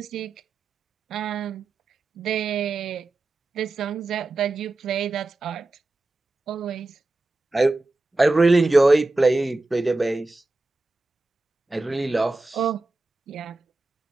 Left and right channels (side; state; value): left; quieter; 3.0 dB